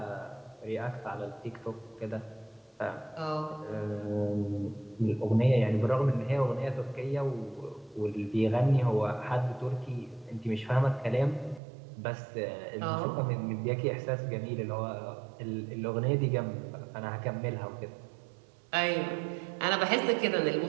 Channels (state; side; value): drops out; left; at 11.6 s